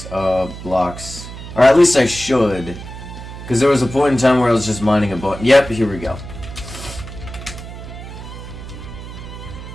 of blocks. Or at least I should. Because there was a point in time where I was just mining a bunch. Yep, here we go.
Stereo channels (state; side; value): noise; right; hum, 12 dB below the sound